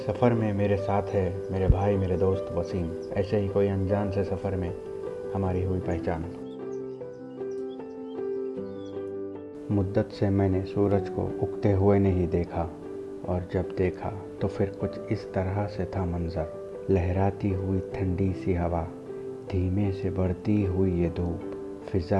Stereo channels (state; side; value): identical; both; correlation 1.00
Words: सफ़र में मेरे साथ है मेरे भाई, मेरे दोस्त वसीम। ऐसे ही कोई अनजान से सफ़र में हमारी हुई पहचान। मुद्दत से मैंने सूरज को उगते हुए नहीं देखा, और जब देखा तो फिर कुछ इस तरह से था मंज़र। लहराती हुई ठंडी सी हवा, धीमे से बढ़ती हुई ये धूप